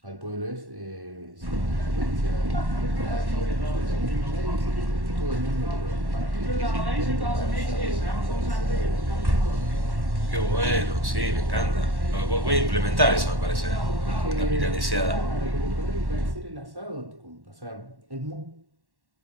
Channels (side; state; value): left; late; 1.1 ms